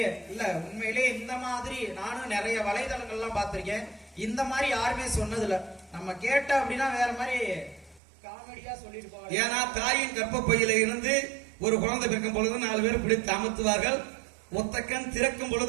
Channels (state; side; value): drops out; left; at 8.0 s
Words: இல்ல, உண்மையிலே இந்த மாதிரி நானும் நிறைய வலைதளங்கள்லாம் பார்த்திருக்கேன். இந்த மாதிரி யாருமே சொன்னதில்ல. நம்ம கேட்ட அப்படின்னா வேற மாதிரி காமெடியா சொல்லிட்டு போவாங்க. ஏன்னா தாயின் கர்ப்பப்பையில இருந்து ஒரு குழந்தை பிறக்கும் பொழுது 4 பேர் பிடித்து அமுத்துவார்கள். ஒத்தக்கண் திறக்கும்